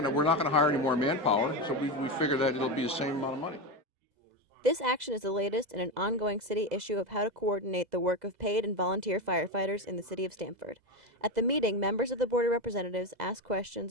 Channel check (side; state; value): left; late; 2.0 ms